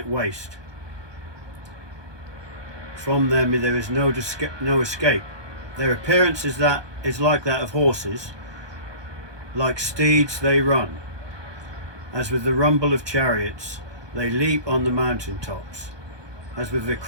waste. From them there is no escape. Their appearance is like that of horses, like steeds they run. As with the rumble of chariots, they leap on the mountain tops, as with the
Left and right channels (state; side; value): late; left; 1.2 ms